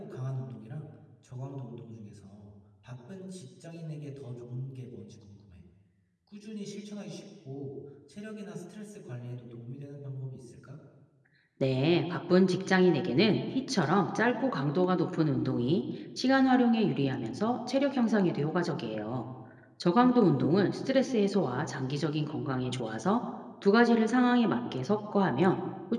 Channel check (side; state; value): both; identical; correlation 1.00